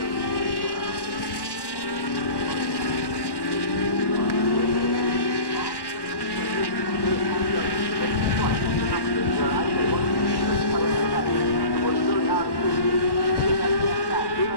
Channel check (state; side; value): late; right; 1.1 ms